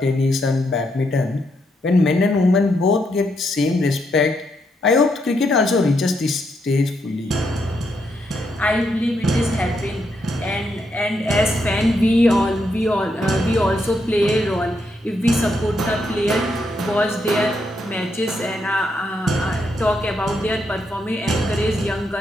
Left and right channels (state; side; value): normal; both; correlation 0.79